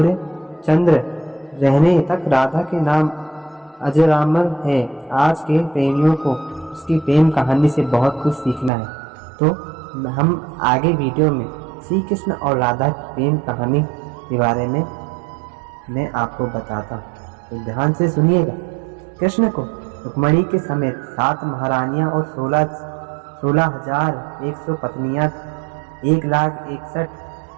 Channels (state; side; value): drops out; left; at 8.7 s